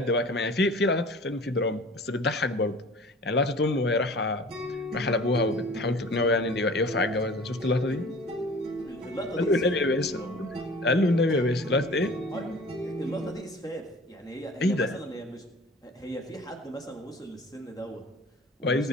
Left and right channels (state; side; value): normal; both; correlation 0.44